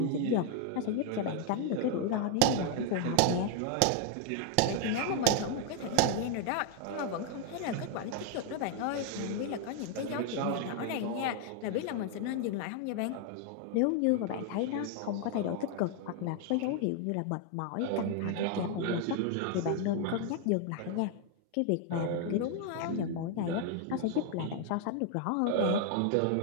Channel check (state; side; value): different; both; correlation 0.00